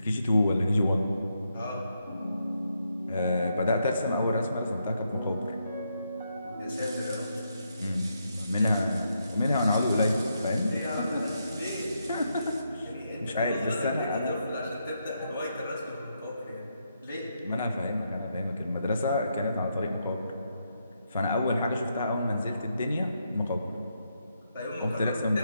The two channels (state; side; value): inverted; both; correlation -0.80